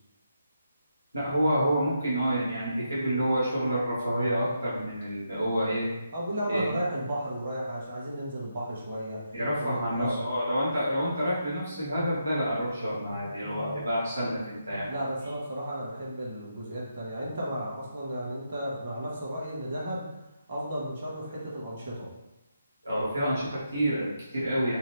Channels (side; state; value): both; inverted; correlation -0.82